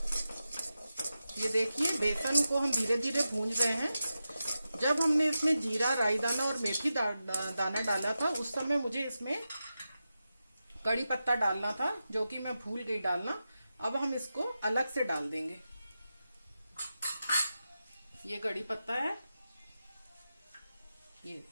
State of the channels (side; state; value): both; inverted; correlation -0.91